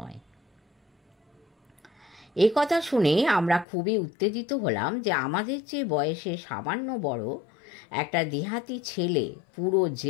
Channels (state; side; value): drops out; right; at 3.7 s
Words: এ কথা শুনে আমরা খুবই উত্তেজিত হলাম যে আমাদের চেয়ে বয়সে সামান্য বড় একটা দেহাতি ছেলে পুরো